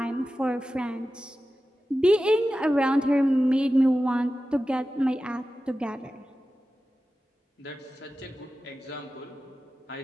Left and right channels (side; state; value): both; normal; correlation 0.94